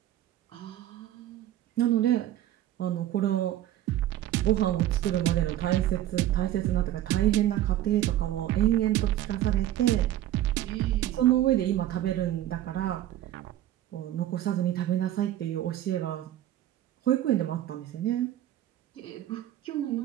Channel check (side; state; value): left; quieter; 13.1 dB